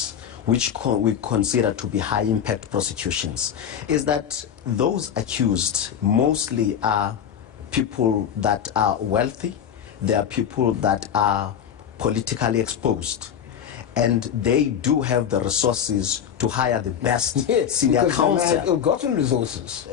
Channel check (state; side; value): quieter; right; 8.7 dB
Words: which we consider to be high impact prosecutions, is that those accused mostly are people that are wealthy, they are people that are politically exposed, and they do have the resources to hire the best senior counsel. They have ill-gotten resources.